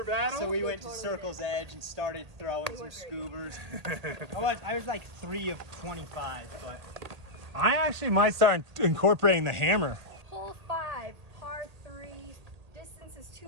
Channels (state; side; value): late; left; 1.8 ms